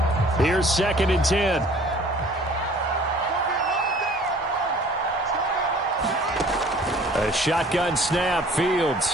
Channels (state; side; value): normal; both; correlation 0.52